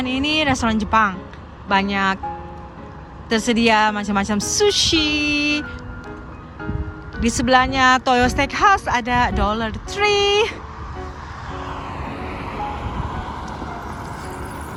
ini restoran Jepang, banyak tersedia macam-macam sushi. Di sebelahnya Toyo Steakhouse ada Dollar Tree.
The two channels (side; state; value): both; identical; correlation 1.00